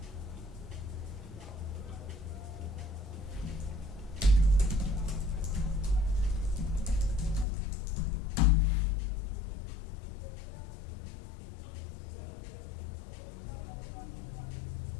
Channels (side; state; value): right; drops out; at 7.5 s